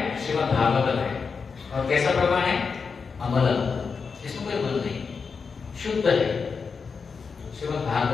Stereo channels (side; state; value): right; quieter; 5.3 dB